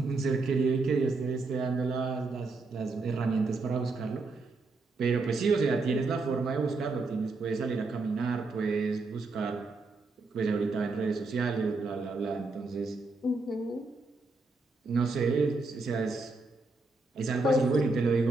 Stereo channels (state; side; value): quieter; left; 3.6 dB